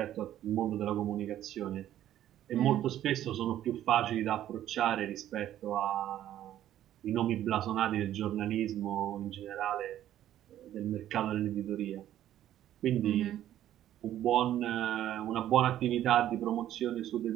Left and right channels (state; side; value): quieter; left; 12.1 dB